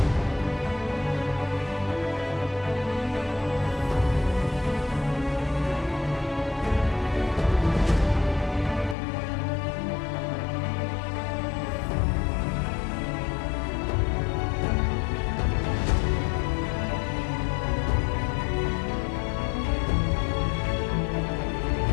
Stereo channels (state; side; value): drops out; right; at 9.0 s